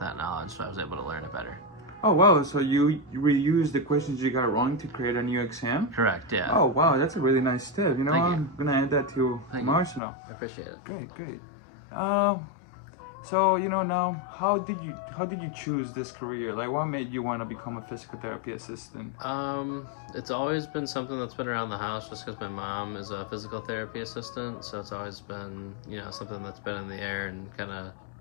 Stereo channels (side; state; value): right; drops out; at 10.0 s